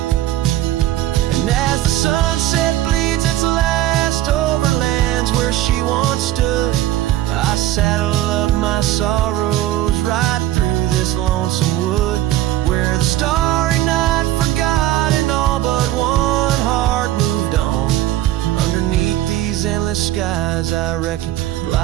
And as the sunset bleeds its last over lands where she once stood, I saddle up my sorrows right through this lonesome wood, where the starry night forgot and all but one heart moved on. Underneath these endless skies, I reckon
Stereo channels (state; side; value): quieter; left; 13.9 dB